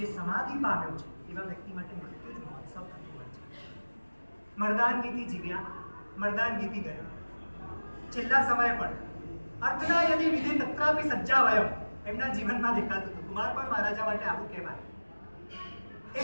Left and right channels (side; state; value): both; inverted; correlation -1.00